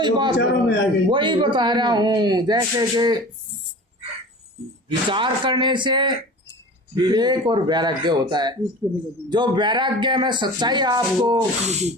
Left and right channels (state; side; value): normal; both; correlation 0.38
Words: वही बता रहा हूँ, जैसे कि विचार करने से विवेक और वैराग्य होता है, जो वैराग्य में सच्चाई आपको